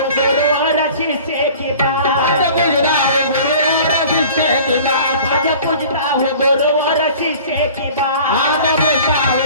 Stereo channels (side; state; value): both; inverted; correlation -0.44